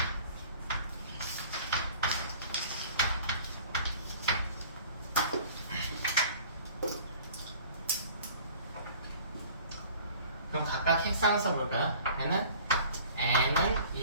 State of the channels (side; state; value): both; inverted; correlation -0.48